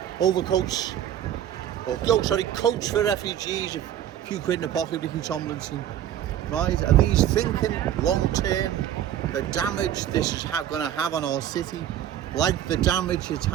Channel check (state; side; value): quieter; left; 10.9 dB